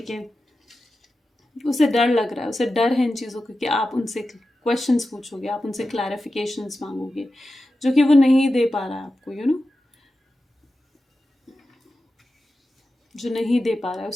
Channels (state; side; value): normal; both; correlation 0.92